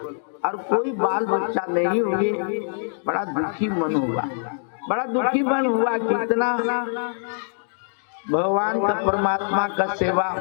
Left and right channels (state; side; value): silent; right; digital silence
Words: और कोई बाल बच्चा नहीं हुए। बड़ा दुखी मन हुआ, बड़ा दुखी मन हुआ। कितना भगवान का, परमात्मा का सेवा,